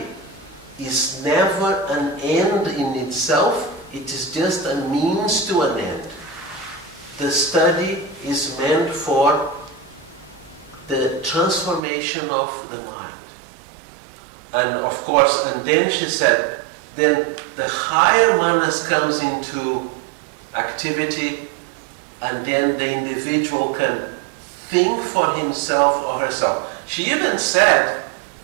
is never an end in itself, it is just a means to an end. The study is meant for the transformation of the mind. And of course, and then she said, then the higher manas comes into activity, and then the individual can think for himself or herself. She even said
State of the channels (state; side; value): drops out; left; at 11.8 s